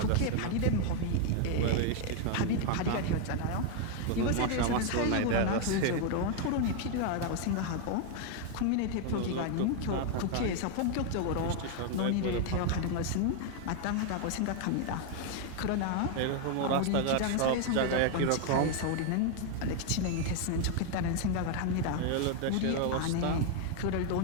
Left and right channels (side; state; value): both; different; correlation 0.01